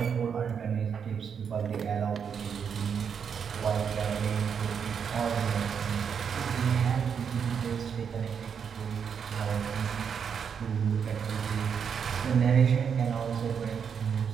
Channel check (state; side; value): quieter; left; 7.0 dB